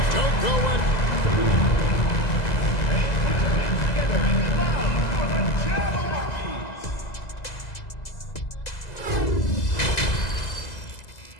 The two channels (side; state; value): right; late; 2.0 ms